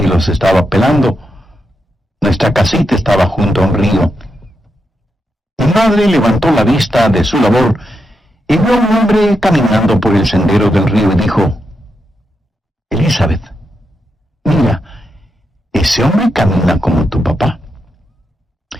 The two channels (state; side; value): normal; both; correlation 0.85